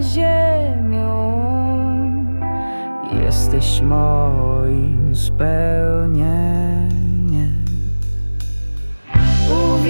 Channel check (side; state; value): both; inverted; correlation -1.00